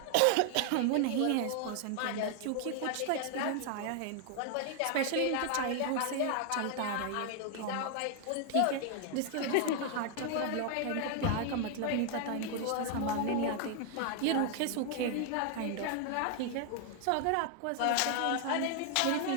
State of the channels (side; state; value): both; different; correlation 0.00